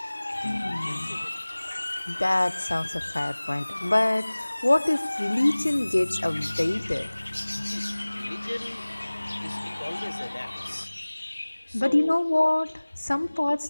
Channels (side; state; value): both; inverted; correlation -1.00